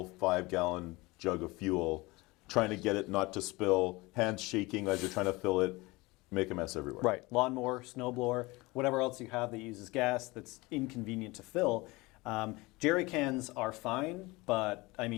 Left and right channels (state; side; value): quieter; right; 22.8 dB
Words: 5-gallon jug of fuel, trying to get it not to spill, hands shaking as you're trying to fill it, make a mess everywhere. Right. Lawnmower, snowblower, whatever else you have that uses gas that's inconvenient to fill. Jerry cans are fine, but I